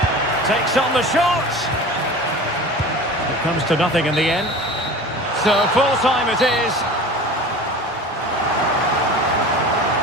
Takes on the shot. It comes to nothing in the end. So full time it is.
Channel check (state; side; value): normal; both; correlation 0.37